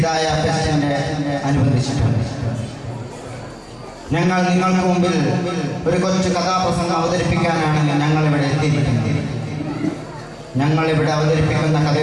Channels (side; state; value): both; identical; correlation 1.00